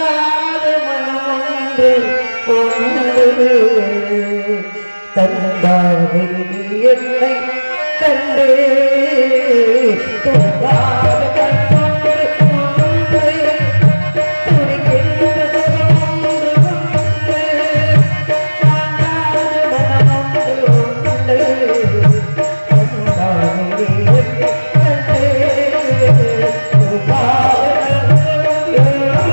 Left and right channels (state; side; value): inverted; both; correlation -1.00